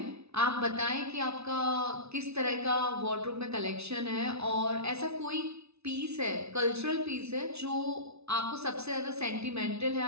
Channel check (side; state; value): left; late; 0.80 ms